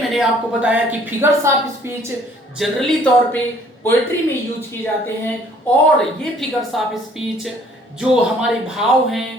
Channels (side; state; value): both; normal; correlation 0.58